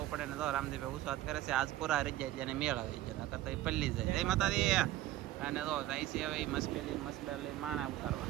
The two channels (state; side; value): quieter; left; 14.7 dB